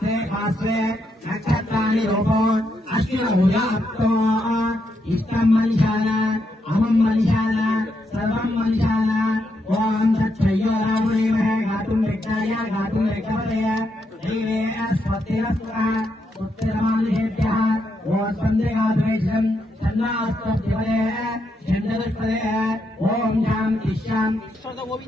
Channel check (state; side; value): normal; both; correlation 0.80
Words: भास्वे नक्षत्राणि रूपो अश्विनभुजाप्तो इष्टं मनुष्याण अहं मनुष्याण सर्वं मनुष्याण ओम तत्सयो रामदेवः गातुं रिक्ताय गातुं रिक्तपदय देवे अस्पतिरस्वः उत्तरमानुषेभ्यः ओम स्पन्दगाद्वेषं चन्द्रास्तपदय चन्द्रदस्पदय ओम शान्ति शान्ति